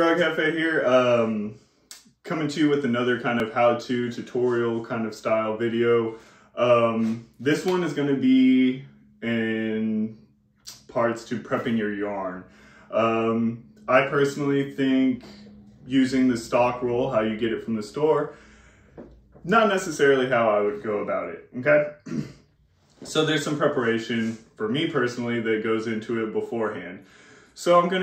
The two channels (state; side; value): identical; both; correlation 1.00